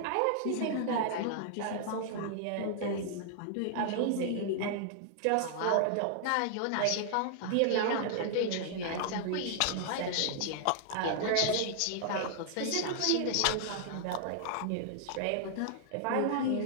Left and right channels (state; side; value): different; both; correlation -0.01